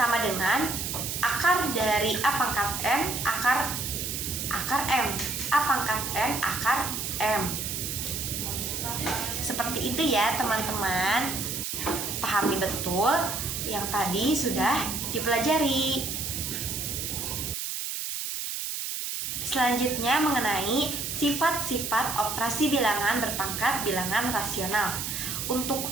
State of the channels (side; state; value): right; noise; hiss, 3 dB below the sound